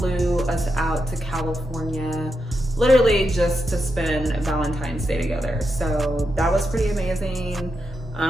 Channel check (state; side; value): normal; both; correlation 0.86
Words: us out to California, literally just to spend Valentine's Day together. So that was pretty amazing.